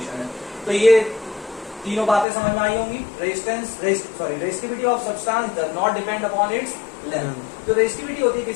है। तो ये तीनों बातें समझ में आई होंगी। Resistivity of substance does not depend upon its length. तो रेजिस्टिविटी होती है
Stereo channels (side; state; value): right; drops out; at 2.2 s